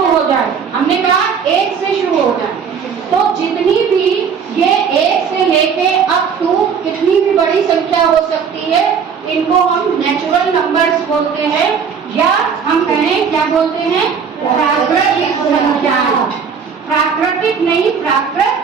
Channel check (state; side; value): quieter; left; 6.6 dB